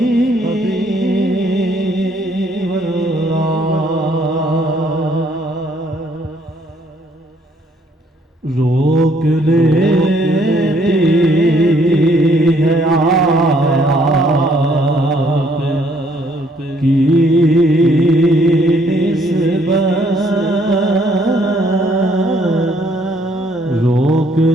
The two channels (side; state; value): both; normal; correlation 0.65